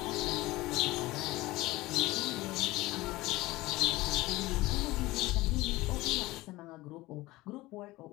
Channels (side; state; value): right; quieter; 19.4 dB